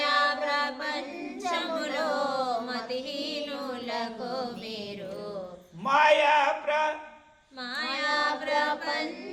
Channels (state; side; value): identical; both; correlation 1.00